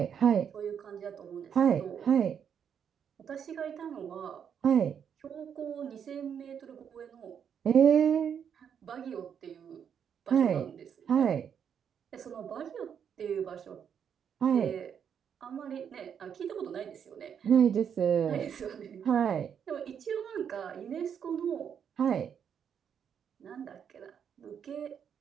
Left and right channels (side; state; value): left; quieter; 7.9 dB